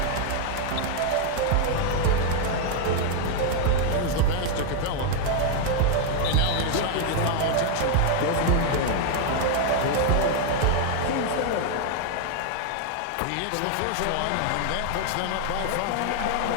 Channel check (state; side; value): different; both; correlation 0.00